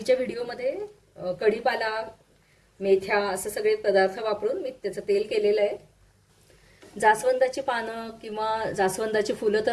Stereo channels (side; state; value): both; identical; correlation 1.00